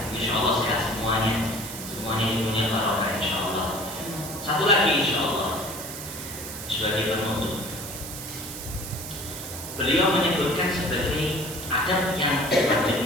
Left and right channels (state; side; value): noise; right; hiss, 9 dB below the sound